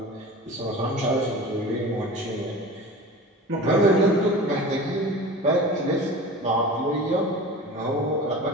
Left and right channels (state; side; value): normal; both; correlation 0.35